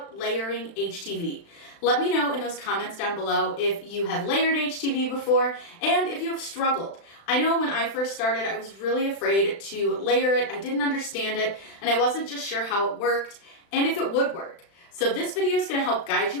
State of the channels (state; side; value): late; right; 36 ms